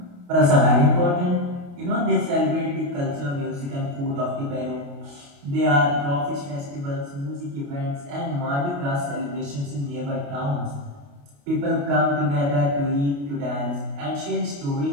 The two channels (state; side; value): late; left; 28 ms